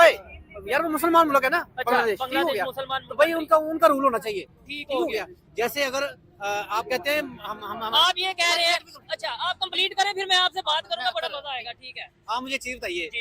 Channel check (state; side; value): identical; both; correlation 1.00